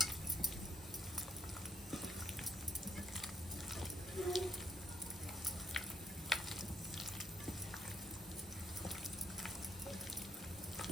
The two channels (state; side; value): normal; both; correlation 0.73